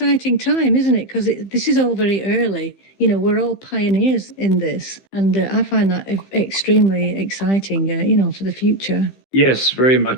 time, isn't it? Because this is all very early. You know, we're all pioneers in this, and I find that extremely exciting. For the future. Yes, very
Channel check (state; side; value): late; right; 15 ms